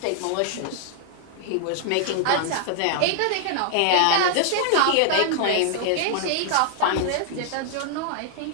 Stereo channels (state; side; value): different; both; correlation 0.00